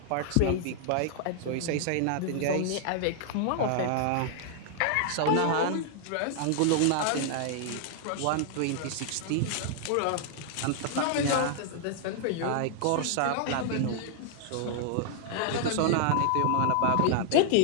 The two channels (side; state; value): both; different; correlation -0.01